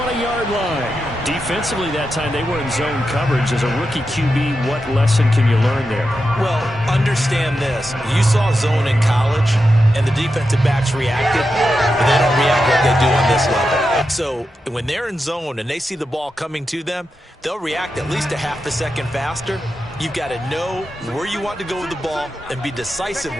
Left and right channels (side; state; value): both; normal; correlation 0.89